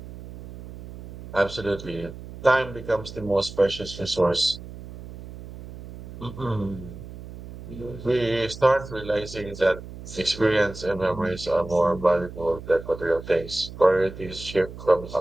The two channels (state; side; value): noise; right; hum, 14 dB below the sound